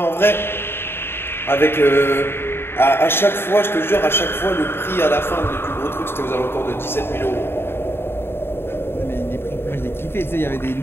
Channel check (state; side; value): late; right; 0.11 ms